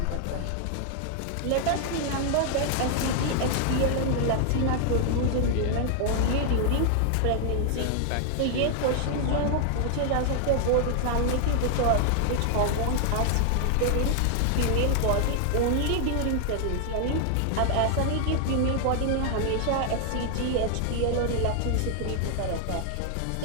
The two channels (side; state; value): both; different; correlation 0.00